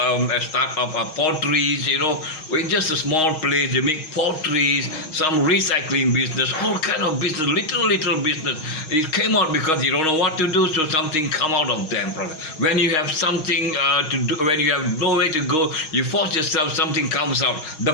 start up potteries, in just a small place. They make potteries, some recycling business, all kind of business, little business. It came out because you don't know what to do, so something come out of them. When you have something to do, when you have no way to go, you force yourself, something comes out. The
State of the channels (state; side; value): late; right; 6.4 ms